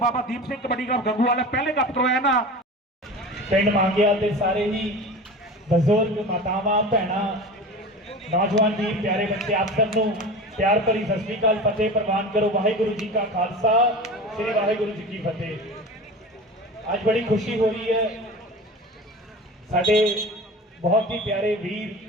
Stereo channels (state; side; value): normal; both; correlation 0.33